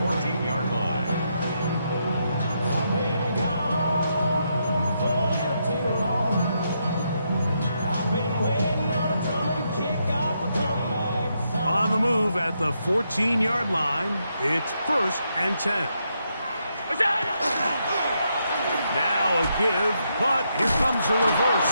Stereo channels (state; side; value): inverted; both; correlation -0.80